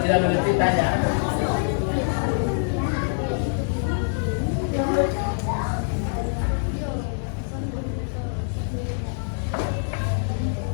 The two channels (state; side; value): silent; right; digital silence